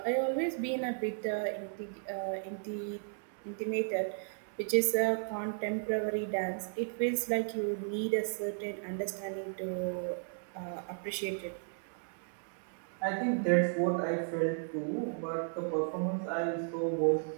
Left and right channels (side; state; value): left; silent; digital silence